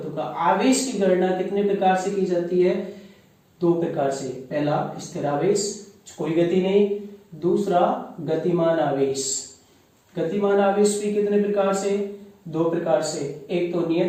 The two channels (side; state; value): both; identical; correlation 1.00